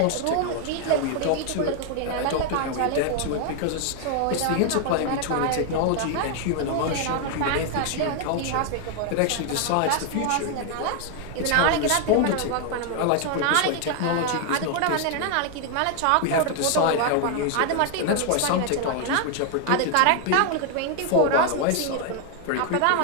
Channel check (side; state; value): both; different; correlation 0.00